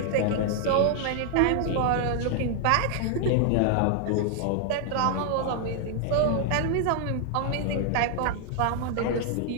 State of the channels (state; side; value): different; both; correlation 0.00